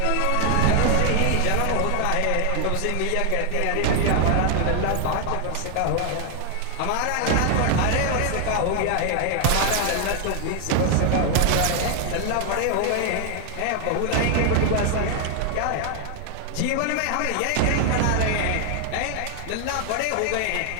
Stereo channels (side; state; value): both; different; correlation 0.00